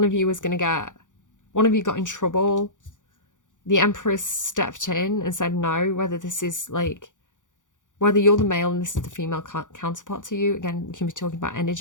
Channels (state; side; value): late; right; 0.87 ms